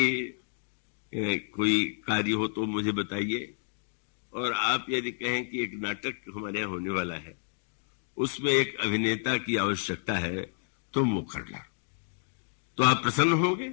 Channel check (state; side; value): silent; right; digital silence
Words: कोई कार्य हो तो मुझे बताइए, और आप यदि कहें कि एक नाटक हमारे यहाँ होने वाला है उसमें एक अभिनेता की आवश्यकता है, तुम वो करना। तो आप प्रसन्न होंगे